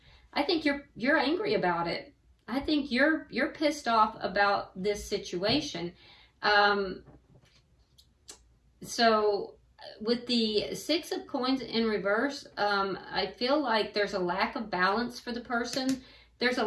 I think you're angry about it. I think you're pissed off about this situation. So with the Six of Coins in reverse, I feel like there's a lack of balance for the person. There's a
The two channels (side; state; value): both; identical; correlation 1.00